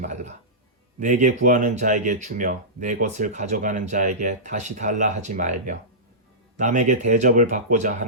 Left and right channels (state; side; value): normal; both; correlation -0.18